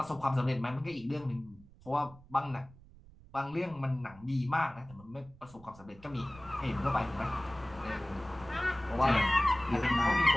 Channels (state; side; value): noise; right; rumble, 22 dB below the sound